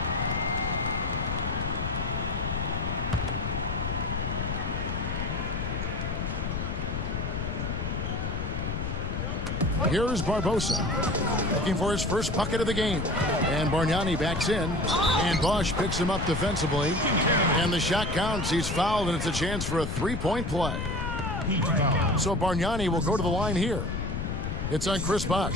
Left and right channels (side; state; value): left; noise; rumble, 3 dB below the sound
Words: Here's Barbosa, looking for his first bucket of the game. And Bargnani backs in, and Bosh picks him up defensively. And the shot counts. He's fouled, and it's a chance for a three-point play. So Bargnani will go to the line here. It's on Chris